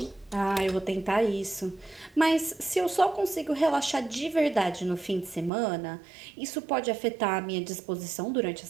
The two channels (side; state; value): left; drops out; at 5.5 s